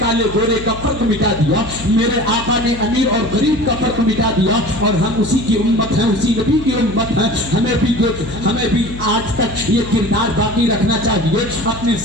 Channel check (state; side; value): noise; left; hum, 13 dB below the sound